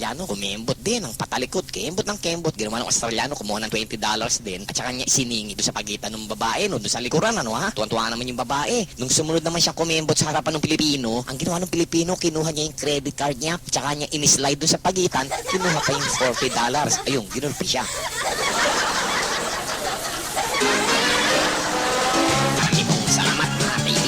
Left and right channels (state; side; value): identical; both; correlation 1.00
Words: kumembot din, ang patalikod, kembot ng kembot. Ginawa ng Australiano, kumuha ng $20 din at saka niya isiningit doon sa pagitan ng babae, no? Doon sa likuran, ano ha? Tuwan-tuwa naman yung babae. Nung sumunod naman siya kumembot sa harapan ng Pilipino, ang ginawa ng Pilipino, kinuha niya yung credit card niya, at saka niya inislide doon sa pagitan, kinuha pa yung $40. Ayun, ginulpi siya. Salamat mga